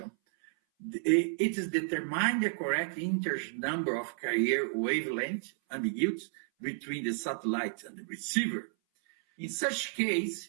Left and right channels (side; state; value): left; silent; 56 dB below the other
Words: It is determine the correct integer number of carrier wavelength ambiguities between the satellite and the receiver. In such case,